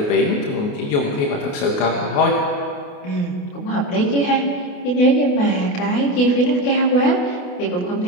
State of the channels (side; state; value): right; late; 28 ms